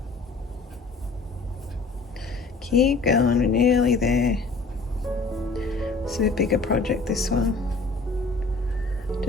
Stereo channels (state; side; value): quieter; right; 3.8 dB